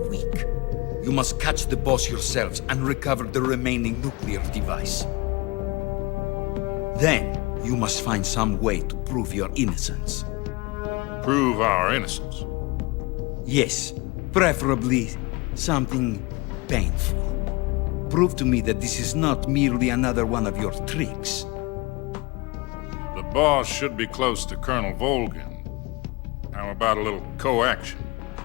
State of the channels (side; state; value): right; quieter; 24.4 dB